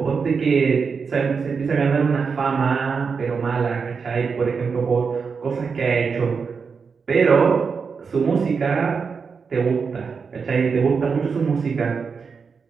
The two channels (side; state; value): left; quieter; 5.5 dB